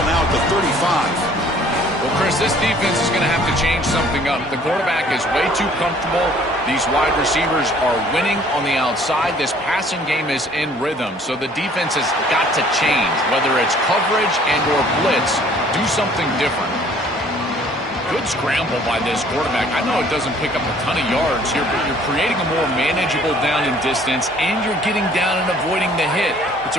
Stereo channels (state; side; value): normal; both; correlation 0.56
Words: now at the 35. Well, Chris, this defense is going to have to change something up. The quarterback is way too comfortable. These wide receivers are winning on the outside. This passing game is in rhythm, so the defense has got to change. Whether it's coverage and or blitz, do something different. Good scramble by this quarterback. I know it doesn't pick up a ton of yards here, but you're creating a more manageable down and distance, and you're getting down and avoiding the hit. It's